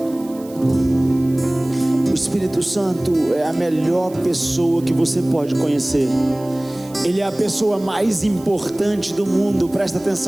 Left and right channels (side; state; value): right; noise; hiss, 23 dB below the sound